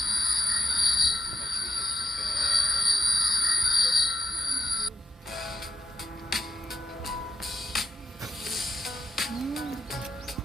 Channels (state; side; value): normal; both; correlation 0.82